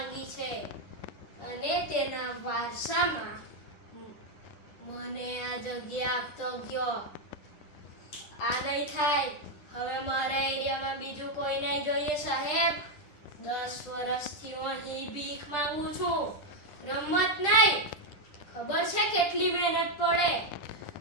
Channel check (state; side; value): late; right; 10 ms